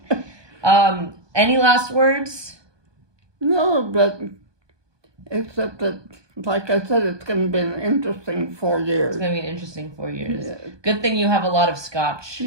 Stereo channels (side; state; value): left; late; 1.2 ms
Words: Any last words? No, but except that, like I said, it's going to be an interesting 4 years. It's going to be an interesting 4 years. Yeah. Good thing you have a lot of scotch.